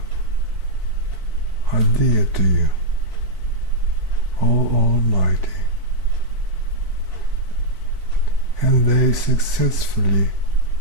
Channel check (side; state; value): left; late; 4.5 ms